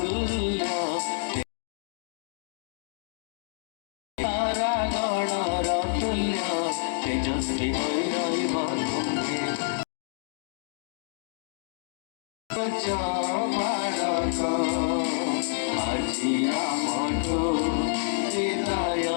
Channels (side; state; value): right; silent; digital silence